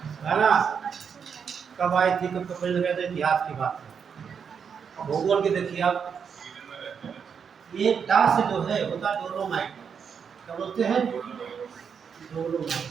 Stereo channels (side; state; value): left; quieter; 6.8 dB